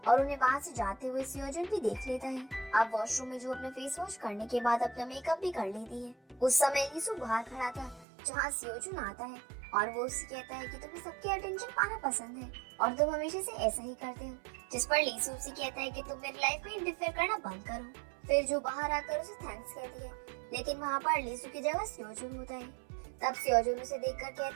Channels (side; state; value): left; drops out; at 8.1 s